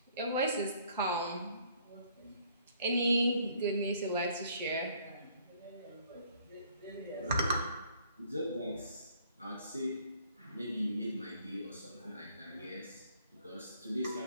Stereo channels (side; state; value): both; inverted; correlation -0.61